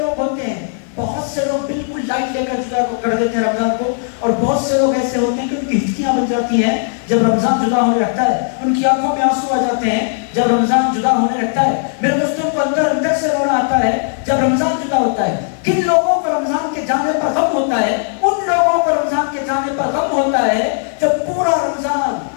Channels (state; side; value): silent; right; 68 dB below the other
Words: ہوتے ہیں۔ بہت سے لوگ بالکل لائٹ لے کر جدا کو کر دیتے ہیں رمضان کو، اور بہت سے لوگ ایسے ہوتے ہیں کہ ان کی ہچکیاں بن جاتی ہیں جب رمضان جدا ہونے لگتا ہے، ان کی آنکھوں میں آنسو آ جاتے ہیں جب رمضان جدا ہونے لگتا ہے۔ میرے دوستوں کو اندر سے رونا آتا ہے جب رمضان جدا ہوتا ہے۔ کن لوگوں کو رمضان کے جانے پر غم ہوتا ہے؟ ان لوگوں کو رمضان کے جانے پر غم ہوتا ہے جب پورا رمضان